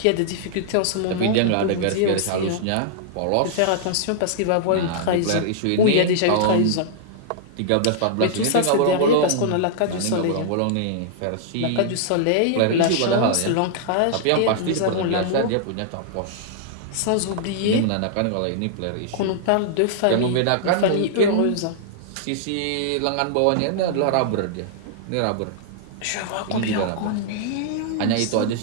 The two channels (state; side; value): different; both; correlation -0.01